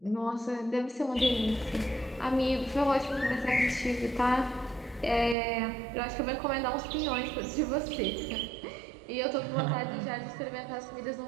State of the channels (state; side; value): drops out; left; at 5.4 s